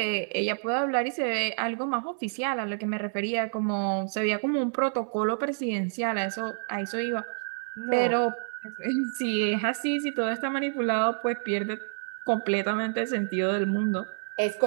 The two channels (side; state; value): left; silent; 59 dB below the other